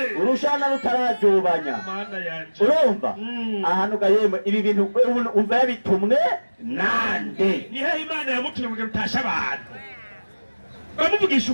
Urushana rutarajobanya. Mana yanje. Urumva? Ahantu gayemwe ibi bintu umva yabitumwe nande. Nihe Imana yamutumye ngo utasha abantu. Bamuvugisha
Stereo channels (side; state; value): both; inverted; correlation -1.00